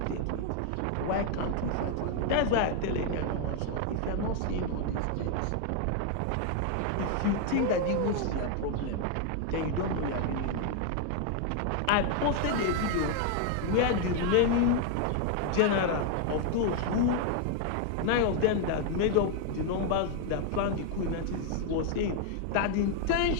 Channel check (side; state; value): both; different; correlation 0.00